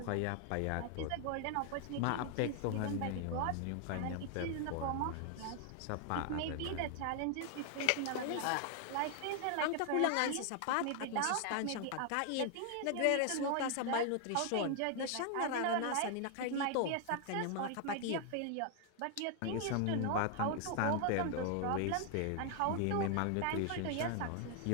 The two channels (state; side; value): different; both; correlation 0.00